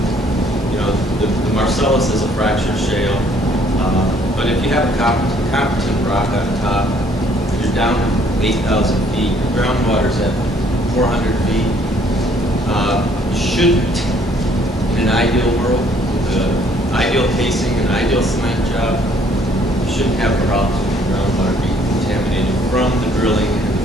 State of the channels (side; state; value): both; normal; correlation 0.63